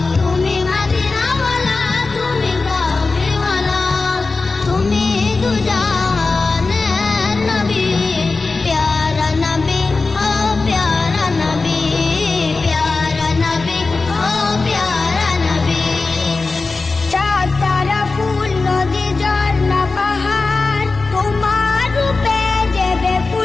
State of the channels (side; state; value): right; quieter; 3.8 dB